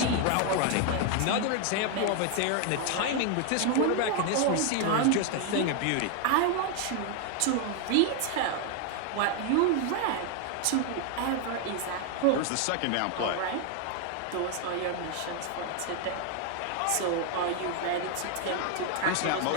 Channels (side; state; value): both; different; correlation 0.01